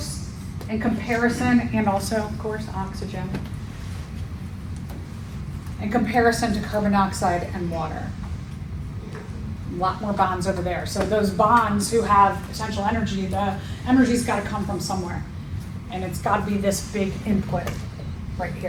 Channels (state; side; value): identical; both; correlation 1.00